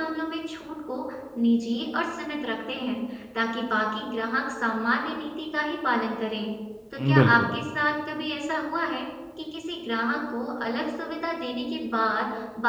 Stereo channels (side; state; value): both; identical; correlation 1.00